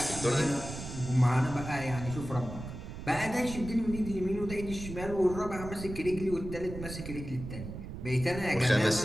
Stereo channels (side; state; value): right; noise; rumble, 9 dB below the sound